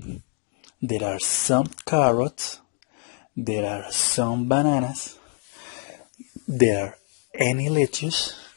There are some carrots. There are some bananas. There are any lettuce.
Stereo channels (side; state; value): right; quieter; 38.4 dB